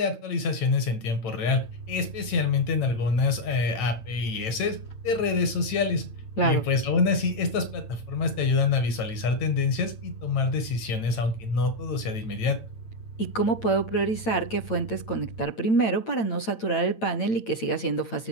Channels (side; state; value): right; late; 9.0 ms